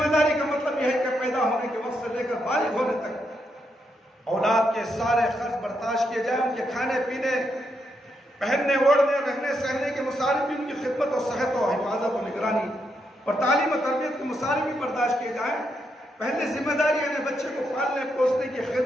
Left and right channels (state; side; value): normal; both; correlation 0.80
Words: داری کا مطلب یہ ہے کہ پیدا ہونے کے وقت سے لے کر بالغ ہونے تک اولاد کے سارے خرچ برداشت کیے جائیں، ان کے کھانے پینے، پہننے اوڑھنے، رہنے سہنے کے مصارف بھی، ان کی خدمت اور صحت و حفاظت و نگرانی اور تعلیم و تربیت کے مصارف بھی برداشت کیے جائیں۔ پہلی ذمہ داری ہے بچے کو پالنے پوسنے کی